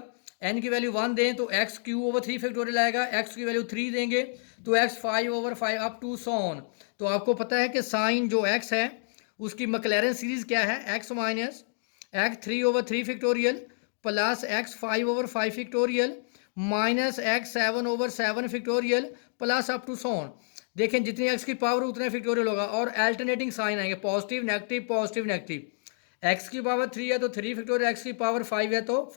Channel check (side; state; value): right; silent; digital silence